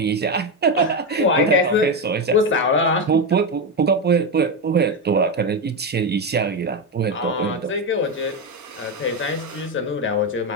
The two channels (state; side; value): normal; both; correlation 0.11